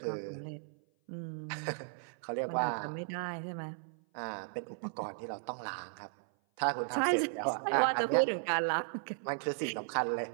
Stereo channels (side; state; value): left; silent; 54 dB below the other